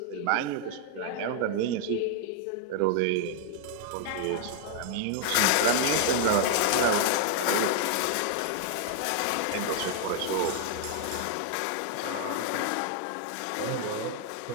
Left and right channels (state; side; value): different; both; correlation 0.00